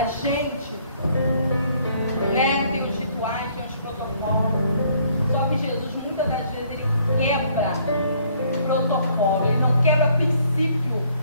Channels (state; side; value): inverted; both; correlation -0.63